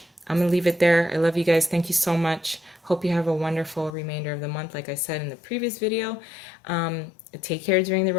I'm going to leave it there. I love you guys. Thank you so much. Hope you have a wonderful remainder of the month. Like I said in the previous video, take care during the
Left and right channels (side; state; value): right; drops out; at 4.0 s